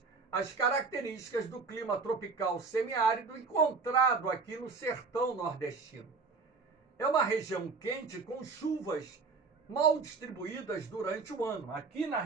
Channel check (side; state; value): left; quieter; 4.5 dB